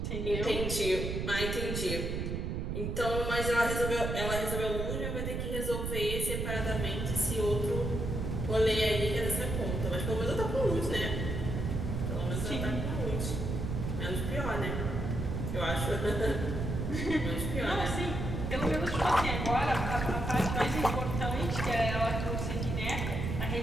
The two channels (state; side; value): noise; right; rumble, 2 dB below the sound